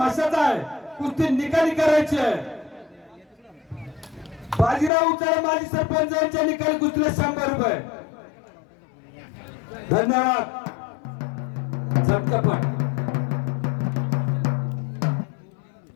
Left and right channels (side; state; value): right; drops out; at 4.9 s